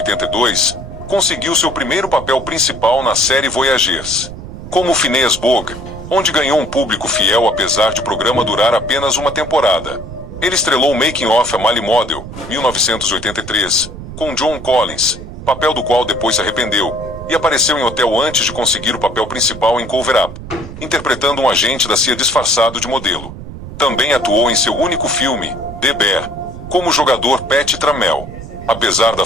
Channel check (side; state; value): right; noise; rumble, 12 dB below the sound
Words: conseguiu seu primeiro papel principal na série Voyagers, como Phineas Bogg, onde ganhou um público fiel apesar de o programa durar apenas uma temporada. Ele estrelou Making of a Male Model, 1983, com John Collins, papel do qual depois se arrependeu, e apareceu em hotel antes de conseguir o papel principal em Cover Up, interpretando um agente da CIA disfarçado de modelo. Também atuou em seu único filme, The Bear, como o jogador Pat Trammell. Apesar da